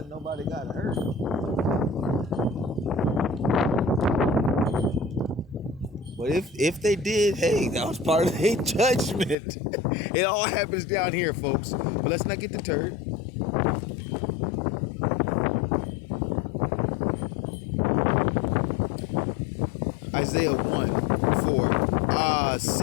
nobody got hurt. But if they did, hey, that was part of their judgment. It all happens down here, folks. But let's not get deterred. Isaiah 1:4.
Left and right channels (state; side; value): drops out; right; at 9.3 s